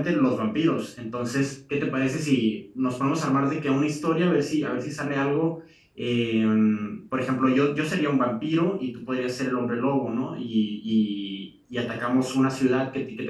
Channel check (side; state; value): both; identical; correlation 1.00